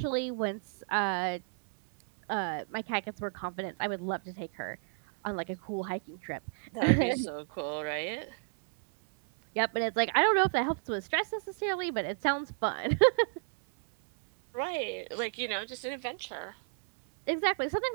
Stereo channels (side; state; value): left; silent; 57 dB below the other